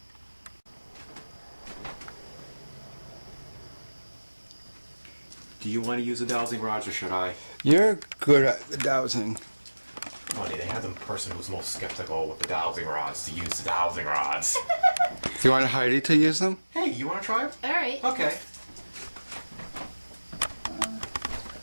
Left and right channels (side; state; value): both; inverted; correlation -1.00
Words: Do you want to use a dowsing rod or should I? You're good at the dowsing. Funny, they have the person who's most skeptical with the dowsing rods to use the dowsing rods. Do you want Heidi to use them? Hey, you want to try it? All right. Okay. Put